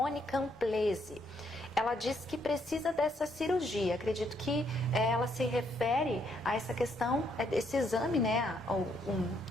Camplese. Ela diz que precisa dessa cirurgia. Acredito que ela se refere a essa questão, esse exame, né,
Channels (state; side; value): normal; both; correlation 0.72